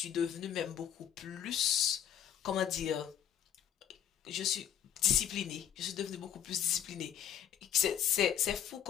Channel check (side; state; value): right; quieter; 9.6 dB